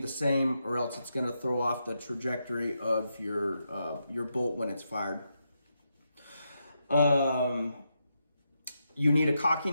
same, or else it's going to throw off the trajectory of your bolt when it's fired. You need a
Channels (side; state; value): both; inverted; correlation -0.84